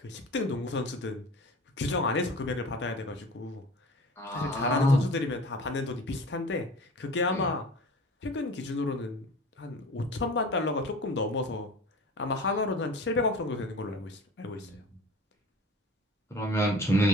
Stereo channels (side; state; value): both; normal; correlation 0.40